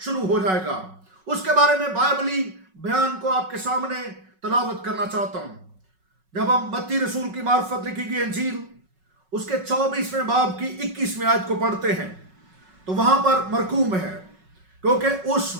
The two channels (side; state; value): left; late; 5.4 ms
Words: ہو جائے گا۔ اس کے بارے میں بائبلی بیان کو آپ کے سامنے تلاوت کرنا چاہتا ہوں۔ جب ہم متی رسول کی معرفت لکھی گئی انجیل اس کے 24ویں باب کی 21ویں آیت کو پڑھتے ہیں تو وہاں پر مرقوم ہے، کیونکہ اس